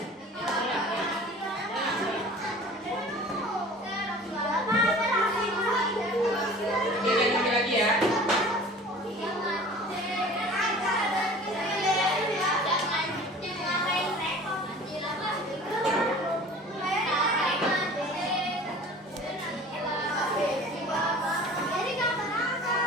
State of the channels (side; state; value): both; normal; correlation 0.43